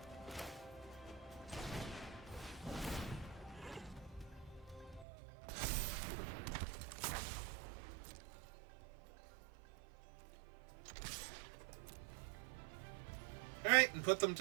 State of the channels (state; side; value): drops out; left; at 5.1 s